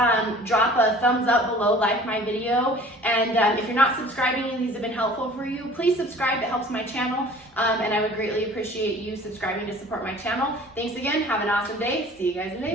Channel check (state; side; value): normal; both; correlation 0.47